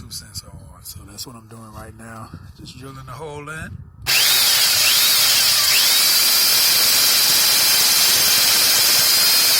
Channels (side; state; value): both; identical; correlation 1.00